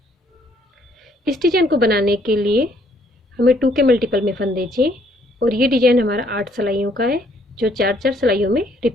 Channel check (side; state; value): both; normal; correlation 0.66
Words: इस डिजाइन को बनाने के लिए हमें 2 के मल्टीपल में फंदे चाहिए और ये डिजाइन हमारा 8 सिलाइयों का है, जो 4-4 सिलाइयों में